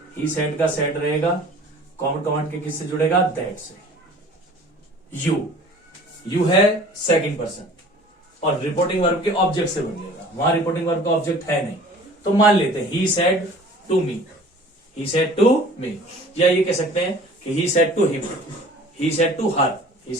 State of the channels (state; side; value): normal; both; correlation 0.47